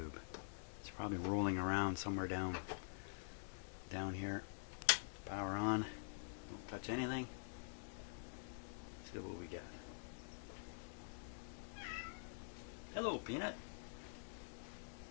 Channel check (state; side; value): silent; right; digital silence